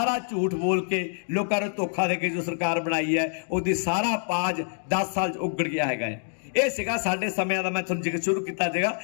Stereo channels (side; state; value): right; silent; digital silence